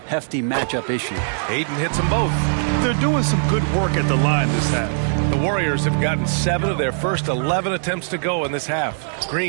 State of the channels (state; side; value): silent; left; 55 dB below the other